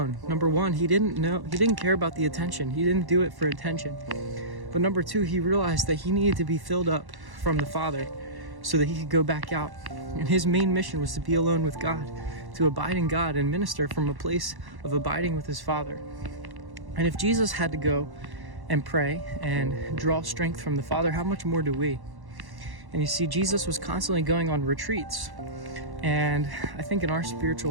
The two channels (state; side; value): late; left; 1.1 ms